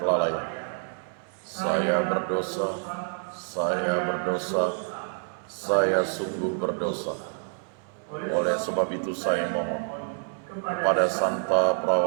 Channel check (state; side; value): silent; left; 59 dB below the other